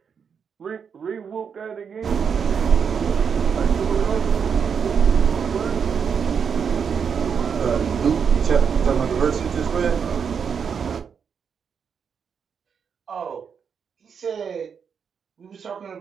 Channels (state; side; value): quieter; left; 6.7 dB